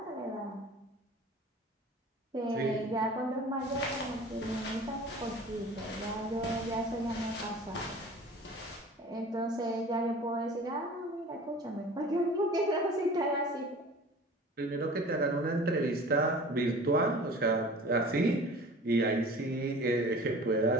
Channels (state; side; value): normal; both; correlation 0.42